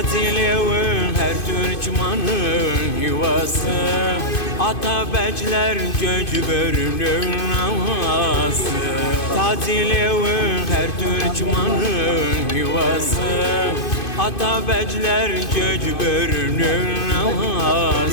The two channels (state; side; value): late; right; 2.5 ms